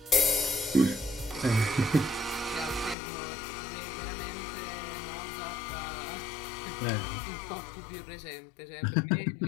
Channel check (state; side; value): drops out; right; at 3.0 s